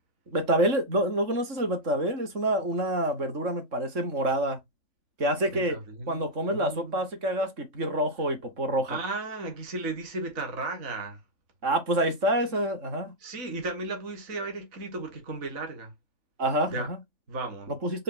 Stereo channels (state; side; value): late; left; 3.7 ms